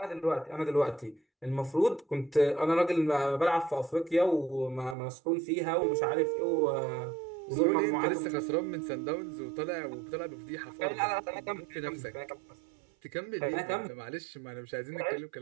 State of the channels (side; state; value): left; drops out; at 5.0 s